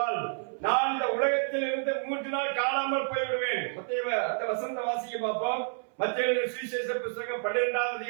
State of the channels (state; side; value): silent; left; 58 dB below the other